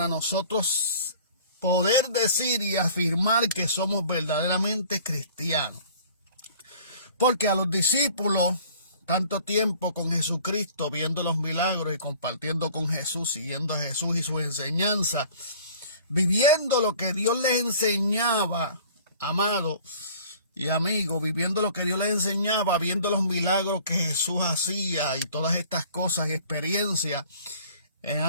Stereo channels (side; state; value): both; inverted; correlation -0.50